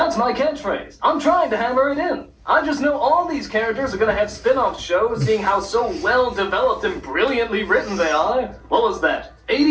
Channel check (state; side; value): identical; both; correlation 1.00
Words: my catchphrase. I'm trying to hammer it in. I just know all these characters are gonna have spin-off shows, seeing how so well developed and brilliantly written they are. What was that?